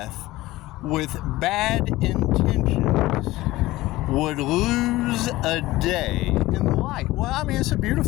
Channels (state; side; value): quieter; right; 17.9 dB